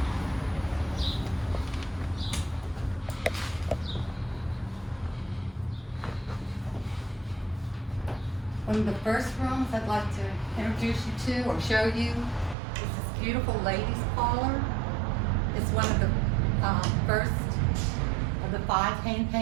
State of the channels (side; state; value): left; drops out; at 12.6 s